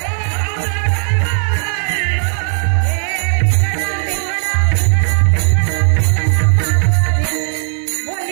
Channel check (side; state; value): left; silent; 70 dB below the other